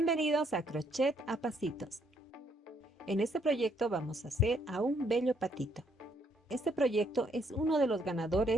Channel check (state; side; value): normal; both; correlation 0.70